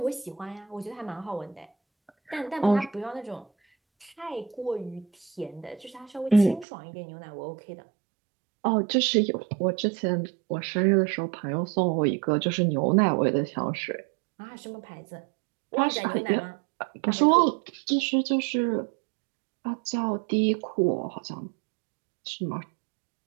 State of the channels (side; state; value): left; drops out; at 6.7 s